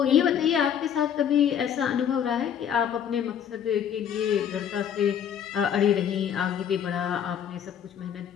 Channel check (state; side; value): quieter; right; 8.8 dB